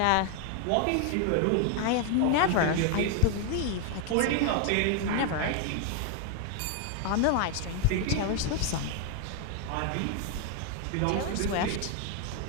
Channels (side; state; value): both; different; correlation 0.01